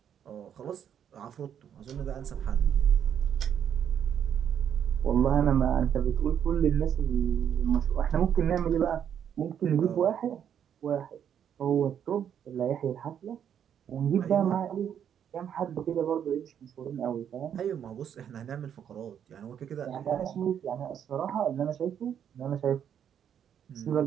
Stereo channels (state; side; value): quieter; left; 8.9 dB